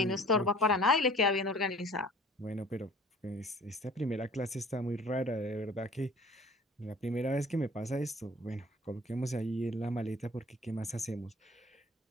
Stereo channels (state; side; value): normal; both; correlation 0.49